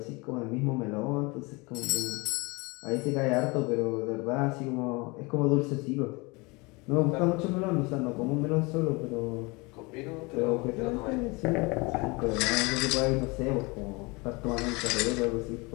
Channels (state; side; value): quieter; right; 26.5 dB